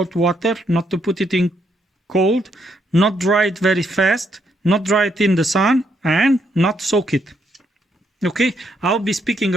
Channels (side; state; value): both; normal; correlation 0.75